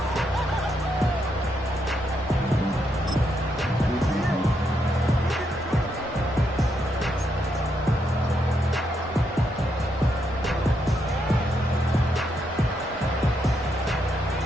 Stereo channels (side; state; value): both; normal; correlation 0.79